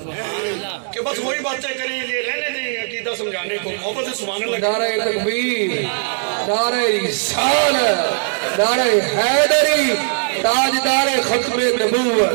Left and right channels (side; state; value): left; silent; digital silence